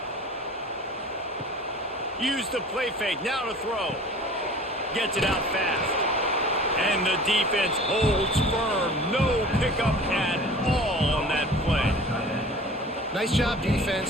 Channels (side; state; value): both; normal; correlation 0.43